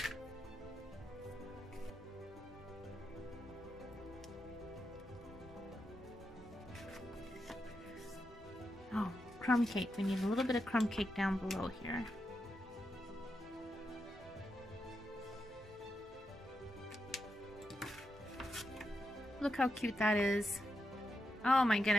crumb cake. We need a little bit of crumb cake down below here. Look how cute that is. Oh my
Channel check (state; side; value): normal; both; correlation 0.86